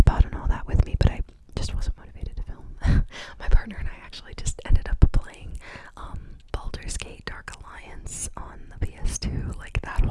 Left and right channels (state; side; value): identical; both; correlation 1.00